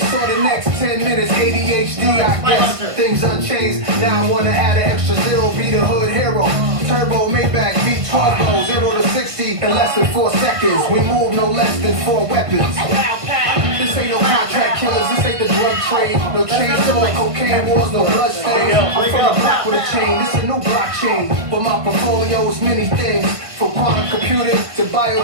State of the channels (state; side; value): late; left; 1.5 ms